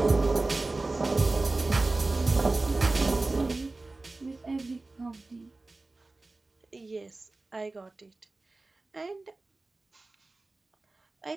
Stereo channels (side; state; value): left; quieter; 3.3 dB